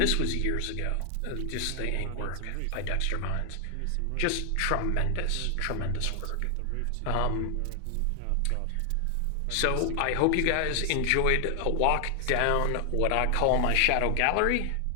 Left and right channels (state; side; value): different; both; correlation 0.00